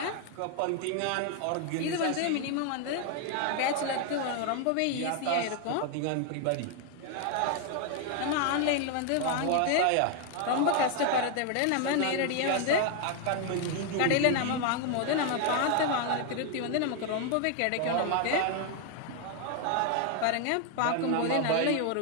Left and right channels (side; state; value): both; different; correlation 0.00